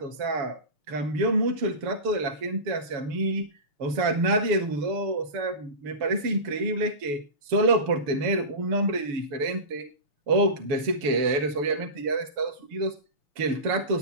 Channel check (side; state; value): left; late; 7.0 ms